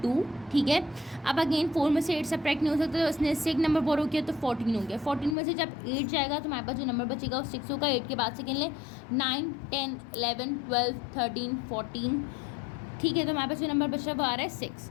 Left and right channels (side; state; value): right; drops out; at 5.4 s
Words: 2। ठीक है, अब अगेन 4 में से 8 सब्ट्रैक्ट नहीं हो सकता, तो उसने इससे एक नंबर बोरो किया तो 14 हो गया। 14 में से जब 8 जाएगा तो हमारे पास जो नंबर बचेगा वो 6 होगा। 8 के बाद से गिन लें 9, 10, 11, 12, 13, 14। ठीक है, तो हमारे पास जो नंबर बच रहा है वो आ रहा है 6,